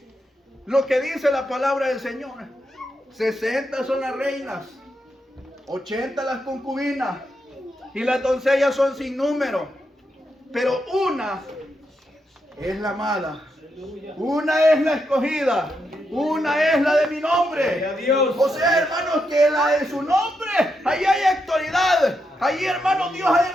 lo que dice la palabra del Señor. 60 son las reinas, 80 las concubinas, y las doncellas son sin número. Pero una es la amada, una es la escogida, una es la de mi nombre. O sea, hermanos, que la de su nombre, ahí hay autoridad. Ahí, hermanos, Dios ha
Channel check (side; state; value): both; normal; correlation 0.83